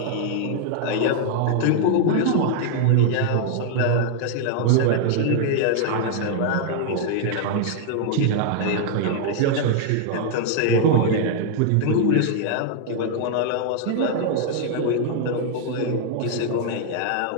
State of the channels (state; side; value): different; both; correlation 0.00